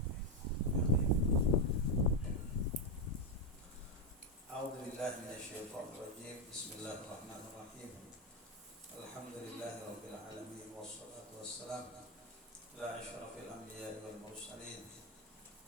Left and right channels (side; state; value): both; normal; correlation 0.05